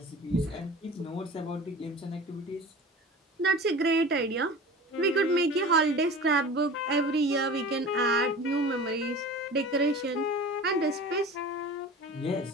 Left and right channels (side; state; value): both; normal; correlation 0.37